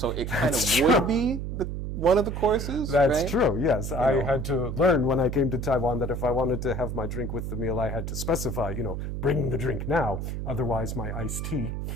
it kind of would be one of the courses. That's true, yes. I had to learn when I came to Taiwan that if I wanted to have my drink with the meal, I had to specify, bring the drink now. Otherwise, my iced tea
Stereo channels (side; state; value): right; noise; hum, 4 dB below the sound